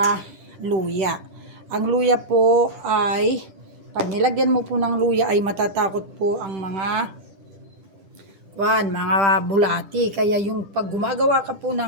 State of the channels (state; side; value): late; left; 10 ms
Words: luya. Ang luya po ay, pag nilagyan mo po ng luya ay matatakot po ang mga bulati. Kaya yung pag gumagawa ka po